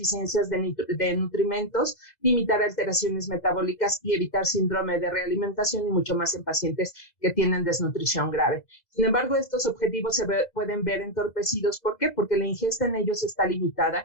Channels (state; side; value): late; right; 2.0 ms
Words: de nutrimentos, limitar alteraciones metabólicas y evitar síndrome de realimentación, y mucho más en pacientes que tienen desnutrición grave. Sin embargo, estos objetivos pueden ver entorpecidos. ¿Por qué? Porque la ingesta en ellos está